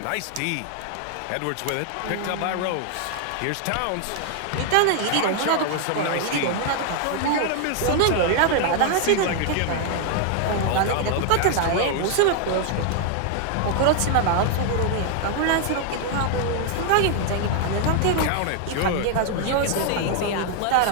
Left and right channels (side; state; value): both; different; correlation 0.00